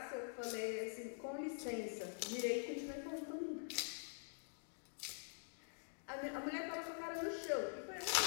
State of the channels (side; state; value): right; silent; digital silence